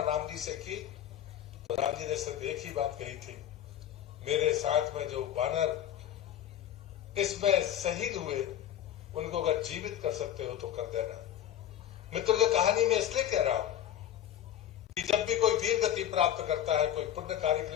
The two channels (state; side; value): quieter; right; 10.9 dB